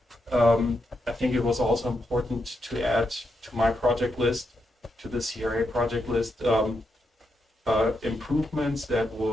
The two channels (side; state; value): both; normal; correlation 0.83